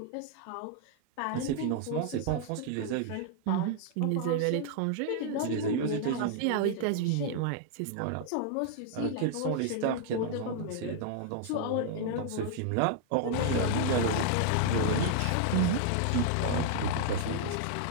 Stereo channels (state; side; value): different; both; correlation -0.01